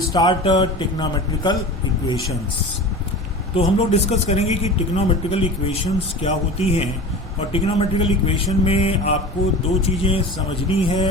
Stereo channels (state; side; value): normal; both; correlation 0.34